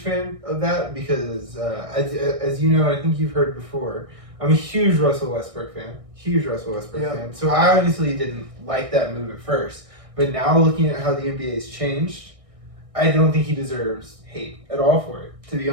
of that because as you know, I think you've heard before, I'm a huge Russell Westbrook fan. Fan. So I honestly didn't like that move at first. But now looking at how the NBA has changed, I don't think he deserves hate at all for it, to be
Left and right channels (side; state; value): left; late; 1.6 ms